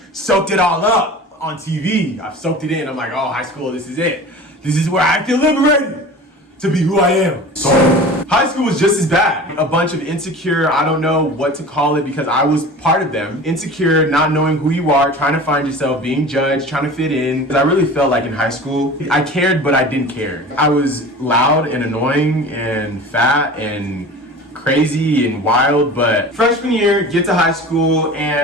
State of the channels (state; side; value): normal; both; correlation 0.37